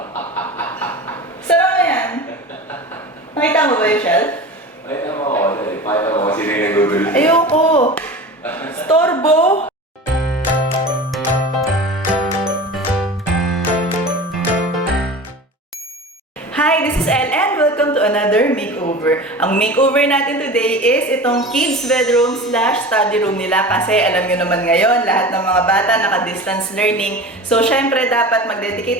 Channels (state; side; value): normal; both; correlation 0.34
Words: Sara mo yan? Nakita mo ba yung shelf? Ay, naman ako. Pakita mo kasi na yung nagugulo. Ayoko! Storbo! Hi, this is Elle and welcome to another makeover. Ang makeover natin today is itong kids bedroom / study room nila kasi alam nyo naman ngayon, lahat ng mga bata naka-distance learning. So, syempre dapat